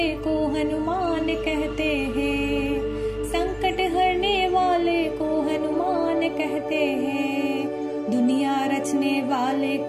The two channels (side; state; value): both; identical; correlation 1.00